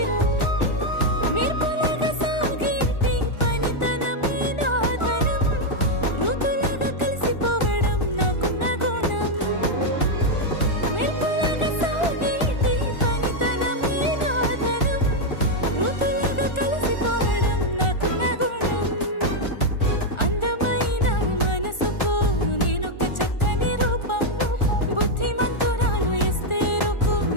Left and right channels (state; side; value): late; right; 1.4 ms